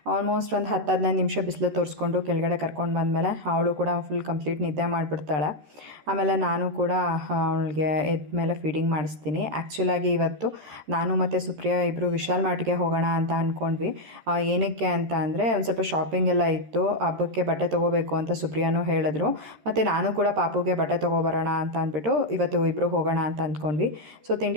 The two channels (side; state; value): left; late; 13 ms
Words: ಆಲ್ಮೋಸ್ಟ್ ಒಂದು 10-15 ನಿಮಿಷ ಬಿಸಿಲು ತೋರಿಸ್ಕೊಂಡು ಕೆಳಗಡೆ ಕರ್ಕೊಂಡು ಬಂದಮೇಲೆ ಅವಳು ಕೂಡ ಫುಲ್ ಕಂಪ್ಲೀಟ್ ನಿದ್ದೆ ಮಾಡಿಬಿಡ್ತಾಳೆ. ಆಮೇಲೆ ನಾನು ಕೂಡ ಅವಳಿಗೆ ಎದ್ದ ಮೇಲೆ ಫೀಡಿಂಗ್ ಮಾಡಿಸ್ತೀನಿ. ಆ್ಯಕ್ಚುಲಾಗಿ ಇವತ್ತು ನಾನು ಮತ್ತು ಸುಪ್ರಿಯಾ ಇಬ್ಬರು ವಿಶಾಲ್ ಮಾರ್ಟ್ಗೆ ಹೋಗೋಣ ಅಂತ ಅಂದ್ಕೊಂಡ್ವಿ. ಏನಕ್ಕೆ ಅಂತ ಅಂದರೆ ಒಂದು ಸ್ವಲ್ಪ ಶಾಪಿಂಗ್ ಎಲ್ಲ ಇತ್ತು, ಹಬ್ಬಕ್ಕೆ ಬಟ್ಟೆ ತೊಗೋಬೇಕು ಅಂತ ಸುಪ್ರಿಯಾನೂ ಹೇಳಿದ್ರು. ಮತ್ತು ನಾನು ಕೂಡ ಪಾಪುಗೆ ಬಟ್ಟೆ ತೊಗೊಬರೋಣ ಅಂತ ಅಂದ್ಬಿಟ್ಟು ಇವತ್ತು ಇಬ್ಬರು ಹೋಗೋಣ ಅಂತ ಅಂದ್ಕೊಂಡ್ವಿ. ಸೊ